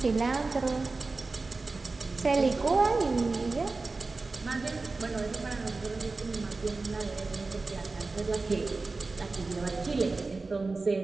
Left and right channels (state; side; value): quieter; left; 3.7 dB